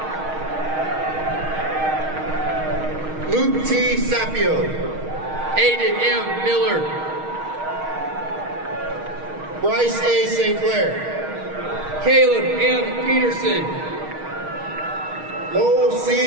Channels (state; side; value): late; left; 6.4 ms